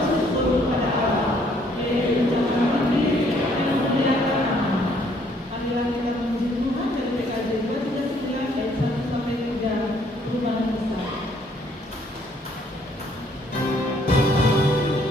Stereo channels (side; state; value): both; normal; correlation 0.65